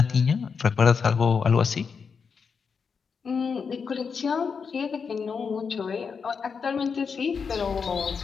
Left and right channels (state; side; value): quieter; right; 5.8 dB